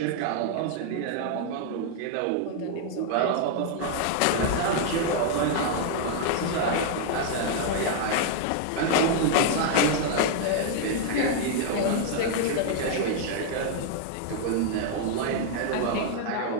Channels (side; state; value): both; different; correlation 0.00